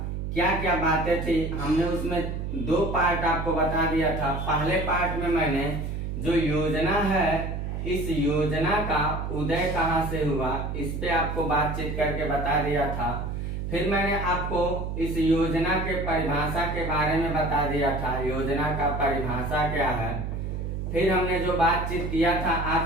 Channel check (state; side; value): noise; right; hum, 4 dB below the sound